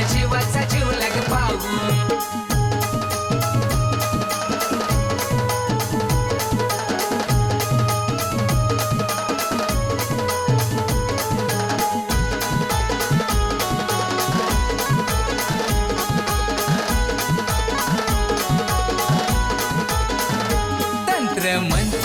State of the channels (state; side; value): identical; both; correlation 1.00